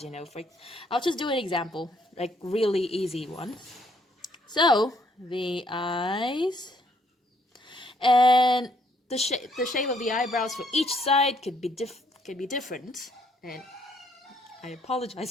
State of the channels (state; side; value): normal; both; correlation 0.68